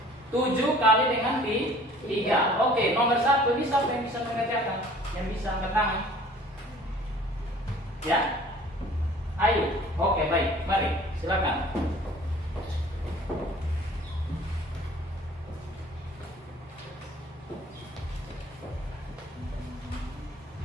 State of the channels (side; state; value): both; normal; correlation 0.51